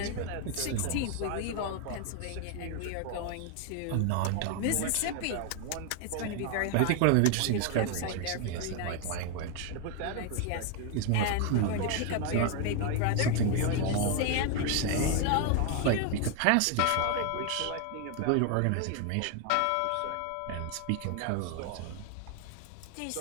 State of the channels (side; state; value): both; different; correlation 0.00